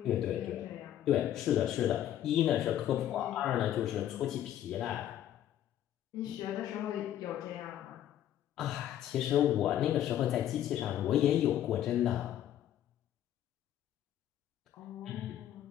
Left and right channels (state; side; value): quieter; right; 11.6 dB